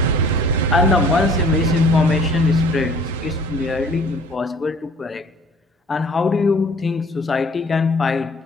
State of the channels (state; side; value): normal; both; correlation 0.52